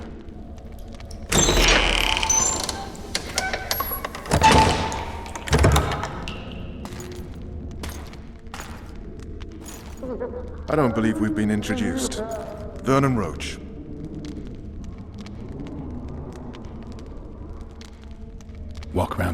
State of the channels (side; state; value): both; identical; correlation 1.00